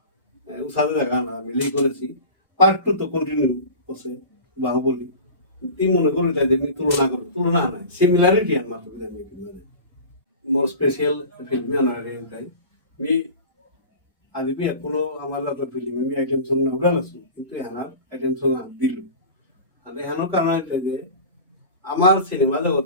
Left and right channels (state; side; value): inverted; both; correlation -0.35